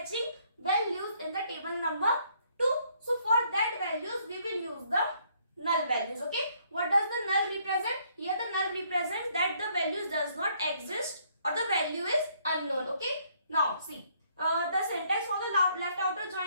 values in the table number 2. So for that values we will use the null values. Okay, what does the null represent? Here the null represents that the values does not exist or the value is unknown. Okay, now see, the syntax for the left outer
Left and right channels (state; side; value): inverted; both; correlation -0.67